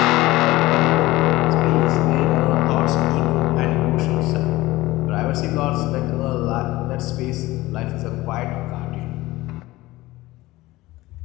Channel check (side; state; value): right; quieter; 18.6 dB